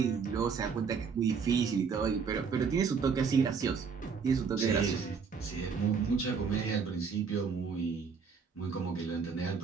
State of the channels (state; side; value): quieter; left; 5.8 dB